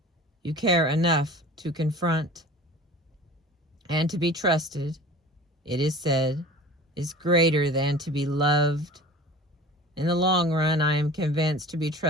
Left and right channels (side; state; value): both; normal; correlation 0.41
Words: You care enough to confront, and to be trusted, it is said, is greater than to be loved. In the long run, I am convinced to be